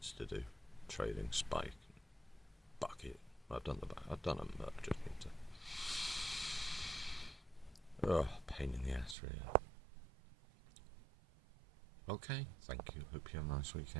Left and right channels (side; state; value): left; drops out; at 9.2 s